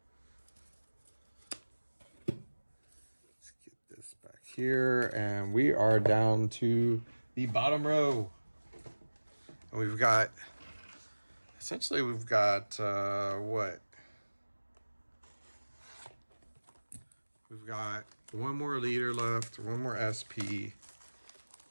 This back here, and we are down to the bottom row, and we've got what, we've got one more leader left, one more SP,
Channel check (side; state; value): both; inverted; correlation -1.00